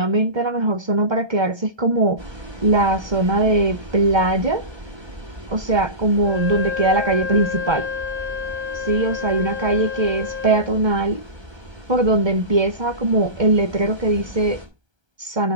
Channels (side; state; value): left; late; 1.3 ms